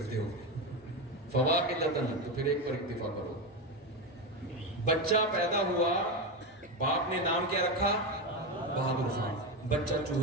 ہو، فَوَاحِدَةً، تو پھر ایک پر اکتفا کرو۔ بچہ پیدا ہوا، باپ نے نام کیا رکھا؟ بہادر خان۔ بچہ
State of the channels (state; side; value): normal; both; correlation 0.14